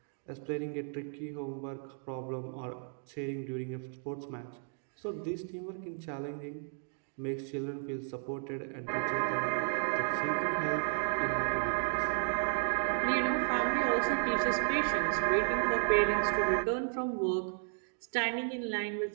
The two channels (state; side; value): silent; left; 55 dB below the other